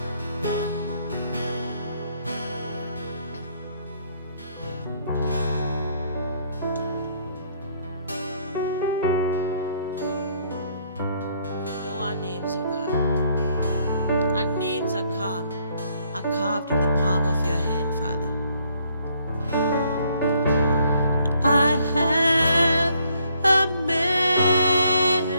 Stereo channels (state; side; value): inverted; both; correlation -0.68